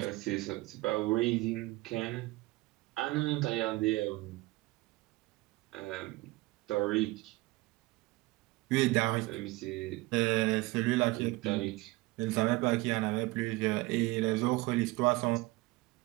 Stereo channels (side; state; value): left; quieter; 21.1 dB